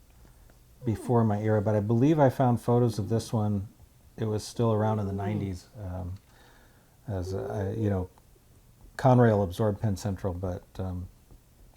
before my era, but I believe I found photos of this one. It was still around in the 90s, as you know, Conrail absorbed Penn Central, but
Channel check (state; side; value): identical; both; correlation 1.00